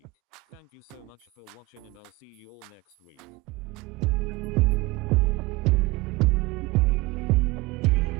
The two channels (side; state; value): left; quieter; 22.1 dB